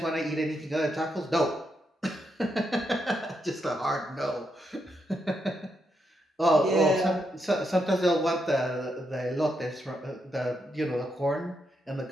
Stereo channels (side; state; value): both; normal; correlation 0.82